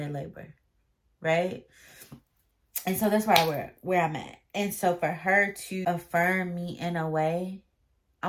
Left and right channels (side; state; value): both; identical; correlation 1.00